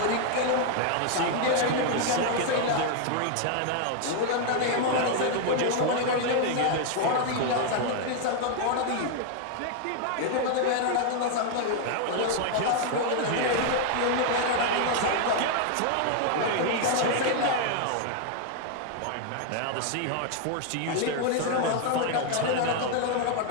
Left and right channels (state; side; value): different; both; correlation 0.00